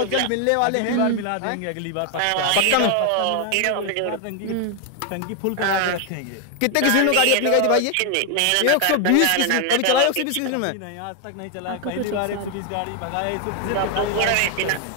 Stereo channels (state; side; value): different; both; correlation 0.00